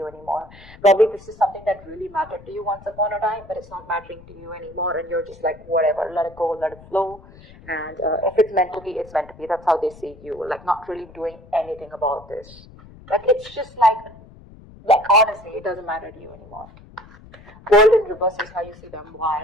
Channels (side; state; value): left; noise; rumble, 21 dB below the sound